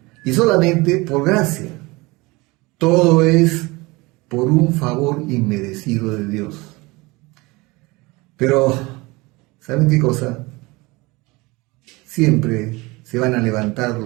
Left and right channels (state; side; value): quieter; left; 23.5 dB